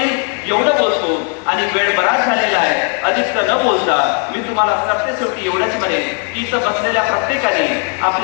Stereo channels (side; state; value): right; quieter; 39.5 dB